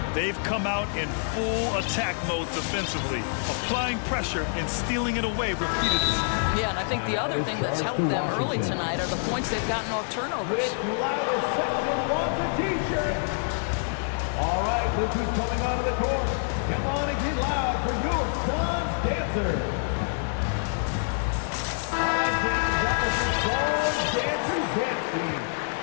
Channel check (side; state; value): right; silent; 60 dB below the other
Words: They've come out in full attack mode defensively, applying pressure and stealing it away repeatedly. Yeah, and I think the other thing that's helped them early tonight are the points they've gotten off turnovers. All right, look who's coming onto the court. Come on and get loud for your son's dancer.